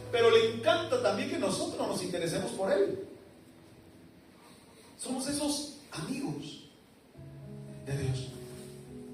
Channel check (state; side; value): identical; both; correlation 1.00